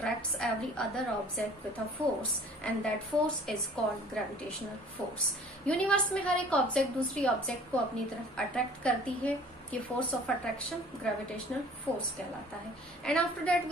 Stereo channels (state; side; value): normal; both; correlation 0.50